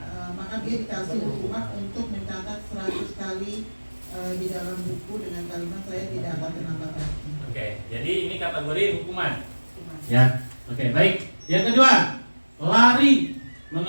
maka dia dikasih hukuman untuk mencatat 100 kali di dalam buku dengan kalimat saya tidak akan terlambat lagi. Oke, jadi ini kategori hukuman. Ya. Oke, baik. Yang kedua, lari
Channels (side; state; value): both; inverted; correlation -1.00